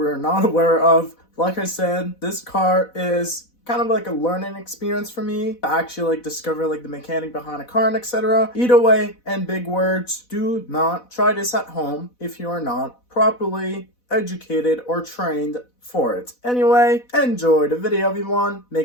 are not aware of. Like I said, this car is kind of like a learning experience for me to actually like discover like the mechanic behind a car and etc. Either way, and big words, do not try this at home if you are not properly educated or trained for it. Anyway, enjoy the video everyone.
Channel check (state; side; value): late; right; 4.1 ms